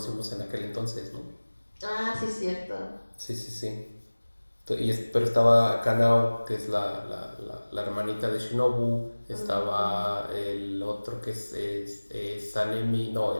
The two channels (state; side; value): inverted; both; correlation -1.00